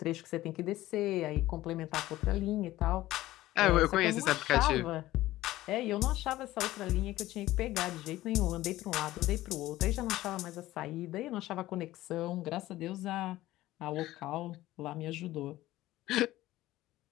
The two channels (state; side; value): quieter; right; 16.2 dB